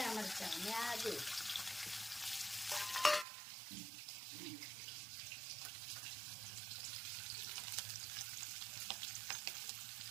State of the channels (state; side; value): drops out; left; at 3.2 s